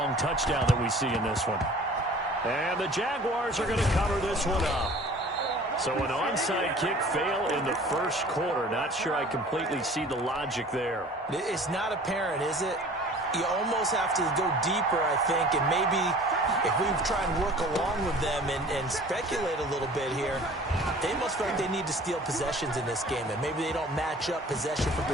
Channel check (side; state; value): both; normal; correlation 0.47